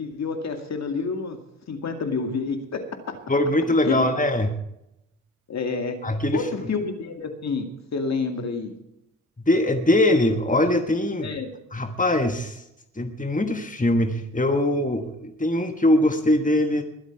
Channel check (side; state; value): both; normal; correlation 0.45